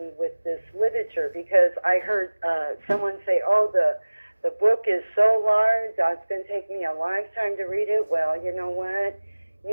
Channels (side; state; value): both; inverted; correlation -1.00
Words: with this literature. Because I heard someone say, "Oh, the book is so large, it's going to take me a lifetime to read it." Well, you know what?